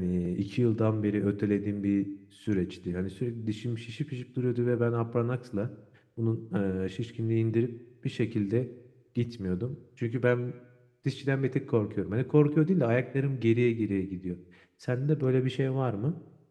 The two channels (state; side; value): identical; both; correlation 1.00